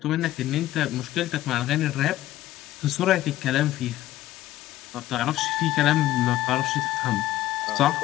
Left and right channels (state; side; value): quieter; right; 14.6 dB